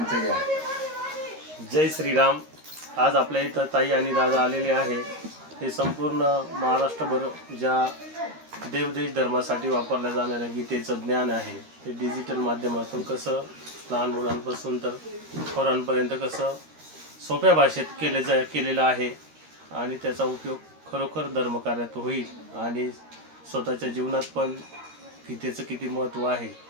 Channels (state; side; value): late; left; 13 ms